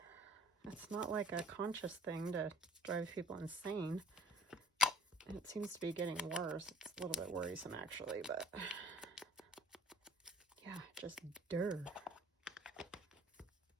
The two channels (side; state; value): both; normal; correlation 0.53